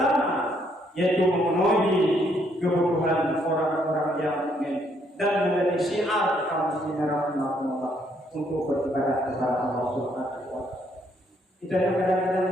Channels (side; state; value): both; normal; correlation 0.70